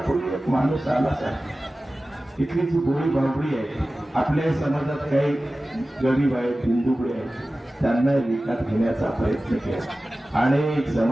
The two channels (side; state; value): both; normal; correlation 0.96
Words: एक माणूस आला सर। इथली जी बोळी बाबळी आहे, आपल्या समाजात काही गरीब आहेत, हिंदुकडे आहेत, त्यांना विकत घेण्याचा प्रयत्न केला, अनेक